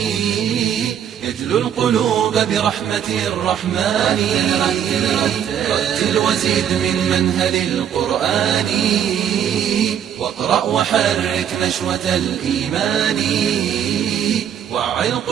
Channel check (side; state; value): left; quieter; 9.2 dB